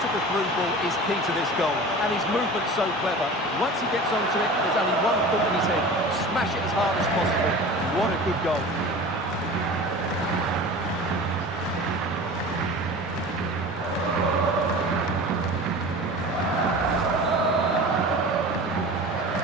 the through ball is key to this goal, and his movement's so clever. Once he gets onto it, there's only one thought in his head: smash it as hard as possible. What a good goal.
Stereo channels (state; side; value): normal; both; correlation 0.37